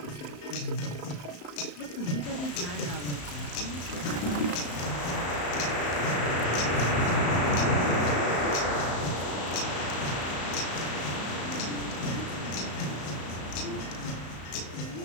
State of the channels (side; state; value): right; late; 35 ms